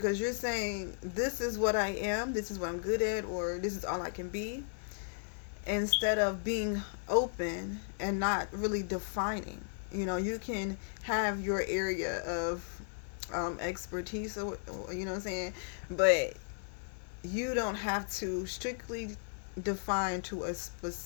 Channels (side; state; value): right; silent; digital silence